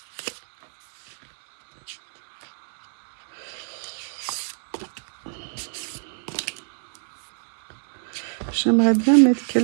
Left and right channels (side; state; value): left; silent; 61 dB below the other